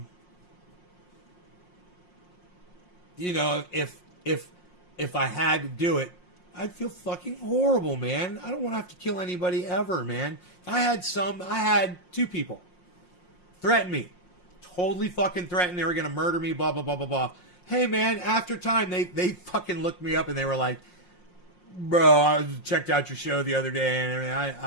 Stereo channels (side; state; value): right; late; 5.6 ms